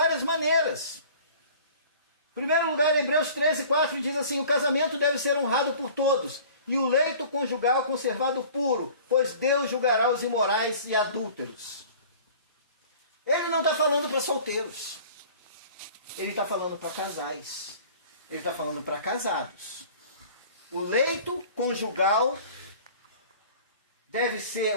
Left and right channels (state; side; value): inverted; both; correlation -0.46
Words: maneiras. Em primeiro lugar, Hebreus 13:4 diz assim, o casamento deve ser honrado por todos, e o leito conjugal conservado puro, pois Deus julgará os imorais e adúlteros. Ele não está falando para solteiros. Ele está falando para casais. Ele está falando para casados. O leito conjugal